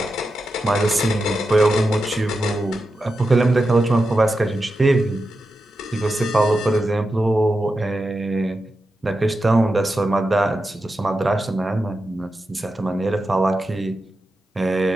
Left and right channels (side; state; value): both; normal; correlation 0.90